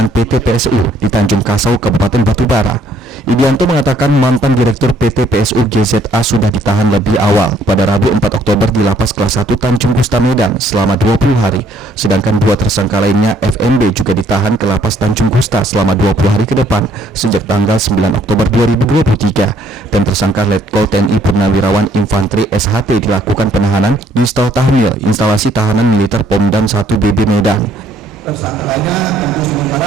PT PSU di Tanjung Kasau, Kabupaten Batubara. Idianto mengatakan mantan Direktur PT PSU GZA sudah ditahan lebih awal pada Rabu 4 Oktober di Lapas Kelas 1 Tanjung Gusta Medan selama 20 hari, sedangkan 2 tersangka lainnya FNB juga ditahan ke Lapas Tanjung Gusta selama 20 hari ke depan sejak tanggal 9 Oktober 2023 dan tersangka Letkol TNI Purnawirawan Infantri SHT dilakukan penahanan di Stel Tahmil instalasi tahanan militer Pomdam 1 BB Medan. Tersangkanya tentu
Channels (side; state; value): both; normal; correlation 0.64